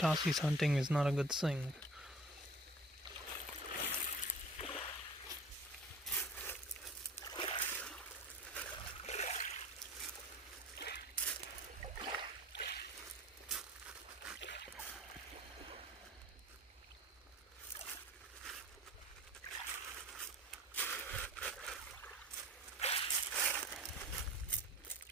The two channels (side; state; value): both; normal; correlation 0.43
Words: hunting is not a good thing.